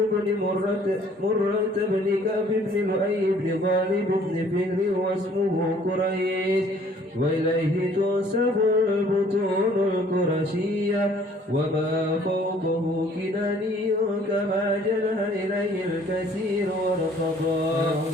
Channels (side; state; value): both; normal; correlation 0.58